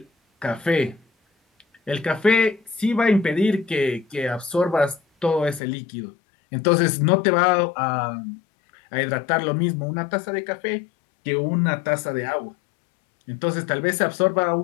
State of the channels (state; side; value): drops out; right; at 5.6 s